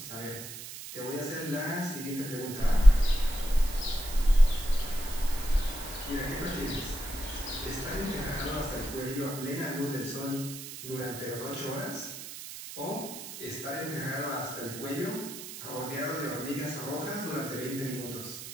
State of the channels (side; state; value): right; noise; hiss, 11 dB below the sound